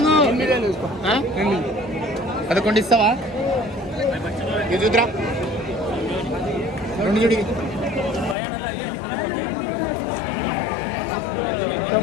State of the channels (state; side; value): drops out; right; at 8.3 s